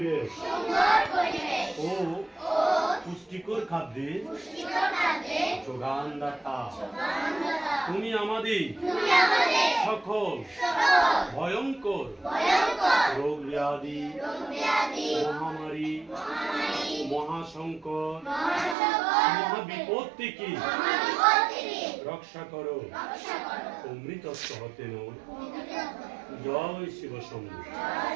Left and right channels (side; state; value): left; drops out; at 18.8 s